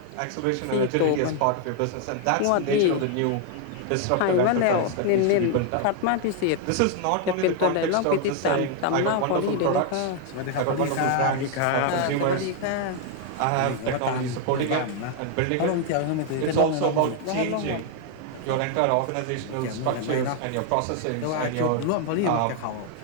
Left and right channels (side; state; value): both; different; correlation 0.00